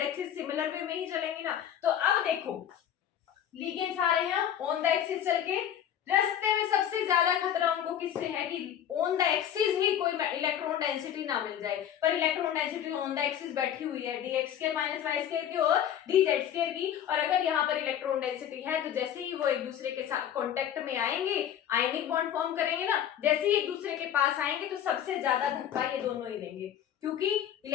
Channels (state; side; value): quieter; right; 9.9 dB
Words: axis similar way में ही चलेंगे ना। तो अब देखो लिगेंड्स आ रहे हैं ऑन द एक्सिस चल के, रास्ते में सबसे ज्यादा खतरा उनको किससे है कि ऑन द एक्सिस ही कोई इलेक्ट्रॉन डेंसिटी ना मिल जाए। पर electron density on the axis बैठी हुई है, dx² - y² की और dz² की। और अगर यहाँ पर इलेक्ट्रॉन डेंसिटी है, तो जैसे ही वो एक दूसरे के साथ कांटेक्ट में आएंगे, आयनिक बॉन्ड फॉर्म करेंगे ना, जैसे ही एक दूसरे के पास आएंगे, तो सबसे ज्यादा धक्का ये दोनों ही देंगे, क्योंकि